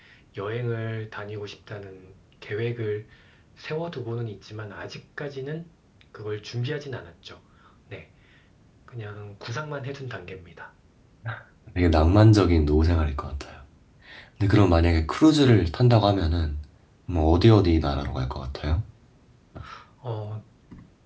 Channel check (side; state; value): both; identical; correlation 1.00